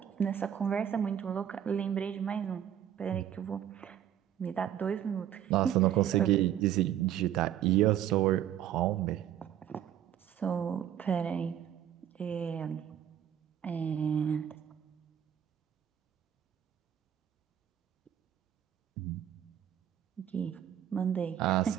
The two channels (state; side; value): quieter; left; 10.4 dB